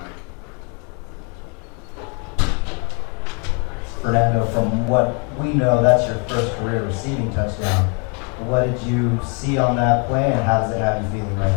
Fernando, from what we know, that's your first career receiving touchdown. What did you see on that play, and how does it have you feeling right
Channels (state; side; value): quieter; right; 35.2 dB